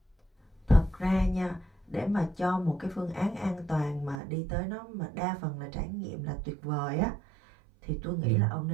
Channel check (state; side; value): drops out; left; at 4.2 s